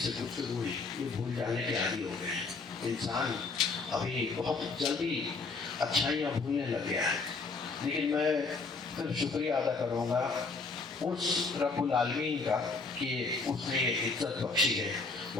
سے گفتگو ہوئی، یہ بھول جانے کے عادی ہو گئے ہیں۔ انسان ابھی بہت جلدی اچھائیاں بھولنے لگ گیا ہے، لیکن میں پھر شکریہ ادا کروں گا اس رب العالمین کا کہ اس نے یہ عزت بخشی ہے۔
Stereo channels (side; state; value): right; quieter; 4.2 dB